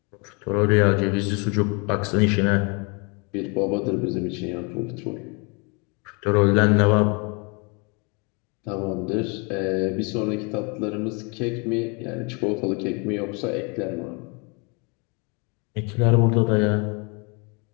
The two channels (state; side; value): quieter; right; 32.3 dB